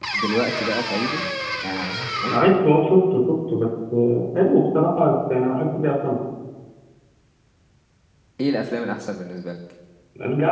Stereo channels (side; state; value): both; identical; correlation 1.00